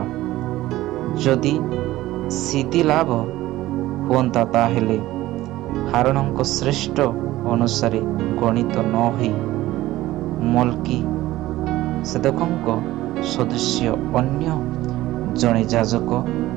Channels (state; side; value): quieter; left; 16.3 dB